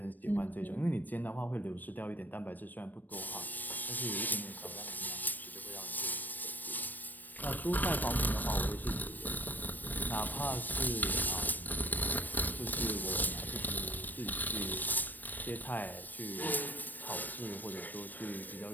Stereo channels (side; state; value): right; late; 0.089 ms